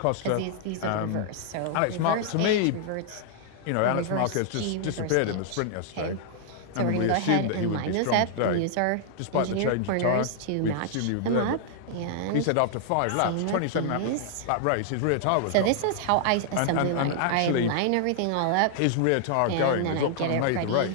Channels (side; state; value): both; different; correlation -0.01